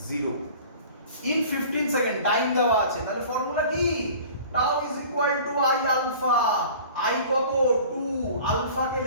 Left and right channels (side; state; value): both; inverted; correlation -0.44